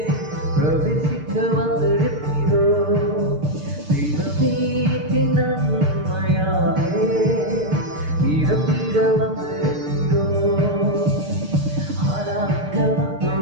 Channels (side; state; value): left; late; 6.6 ms